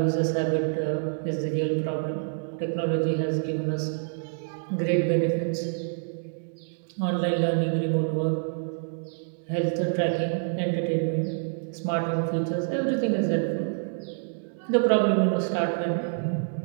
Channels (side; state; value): left; silent; digital silence